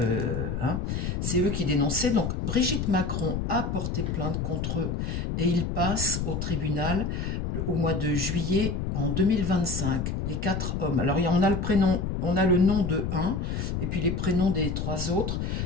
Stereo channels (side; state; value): left; noise; rumble, 2 dB below the sound